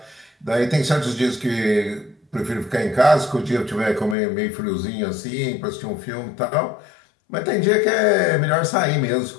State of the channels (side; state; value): right; drops out; at 4.2 s